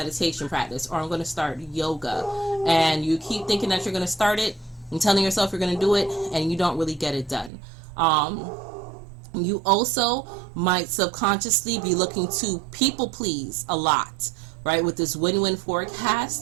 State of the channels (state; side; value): drops out; left; at 7.5 s